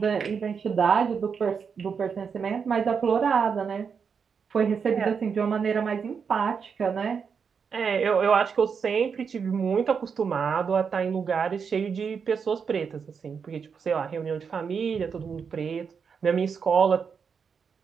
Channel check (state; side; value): quieter; left; 6.2 dB